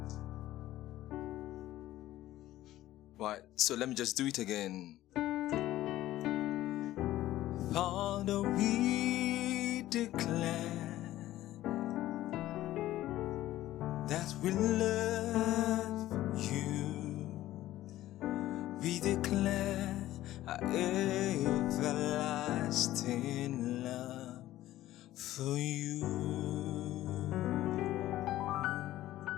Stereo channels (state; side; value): quieter; right; 14.8 dB